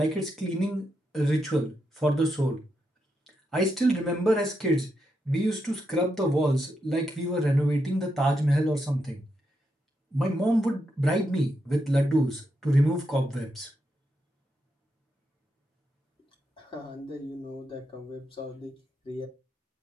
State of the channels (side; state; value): both; normal; correlation 0.83